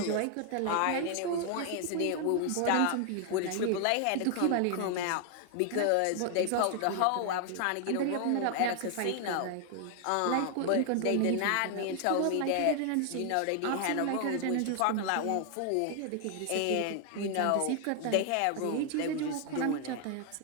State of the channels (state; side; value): different; both; correlation 0.00